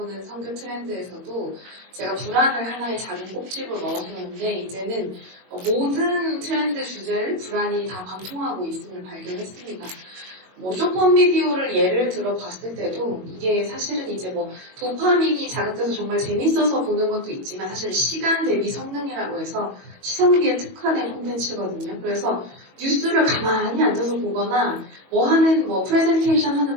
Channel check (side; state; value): left; late; 22 ms